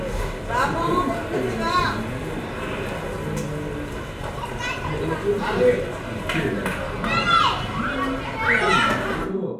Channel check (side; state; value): both; identical; correlation 1.00